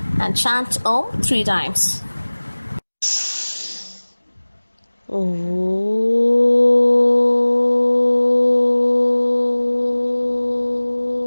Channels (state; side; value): inverted; both; correlation -1.00